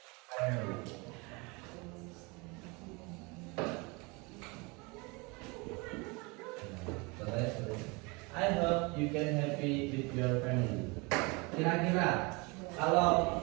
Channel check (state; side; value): quieter; left; 27.7 dB